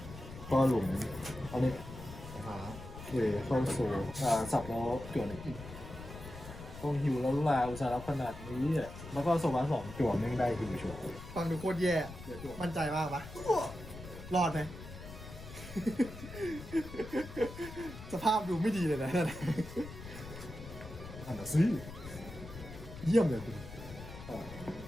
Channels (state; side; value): noise; left; rumble, 13 dB below the sound